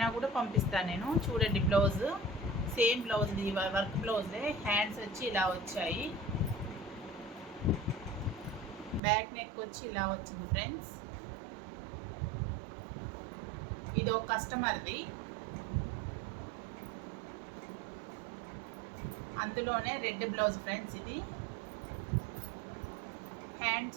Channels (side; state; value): left; drops out; at 9.0 s